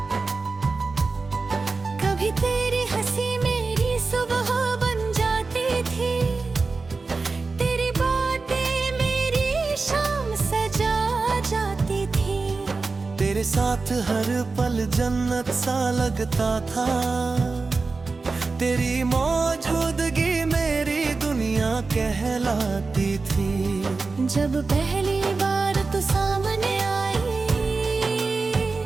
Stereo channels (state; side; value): quieter; left; 4.0 dB